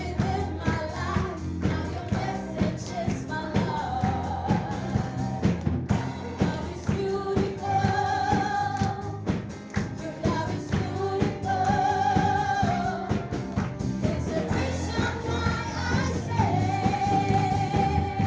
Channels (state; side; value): identical; both; correlation 1.00